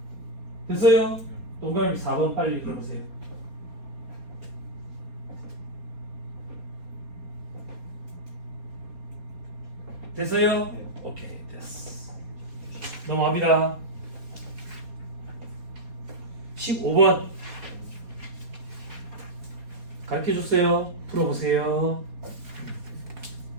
됐어요? 동그라미 4번 빨리 읽어보세요. 됐어요? 네. 오케이, 됐어. 넘어갑니다. 15번 가르쳐줬어요. 풀어보세요.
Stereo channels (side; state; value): left; late; 4.2 ms